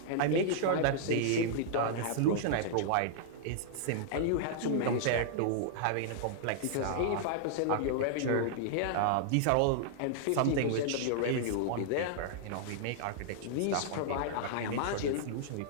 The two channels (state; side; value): different; both; correlation -0.01